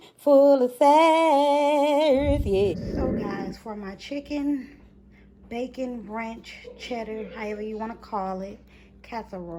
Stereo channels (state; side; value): identical; both; correlation 1.00